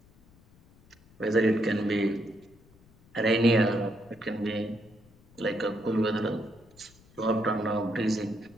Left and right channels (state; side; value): noise; left; rumble, 28 dB below the sound